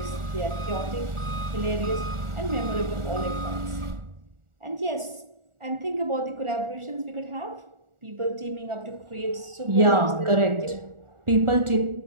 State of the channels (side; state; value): left; late; 1.4 ms